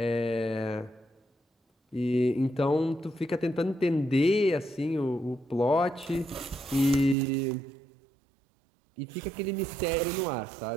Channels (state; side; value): drops out; left; at 7.2 s